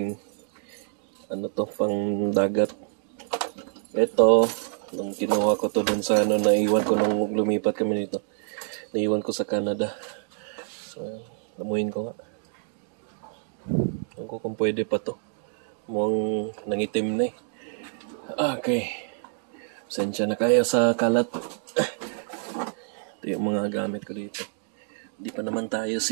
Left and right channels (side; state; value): left; silent; digital silence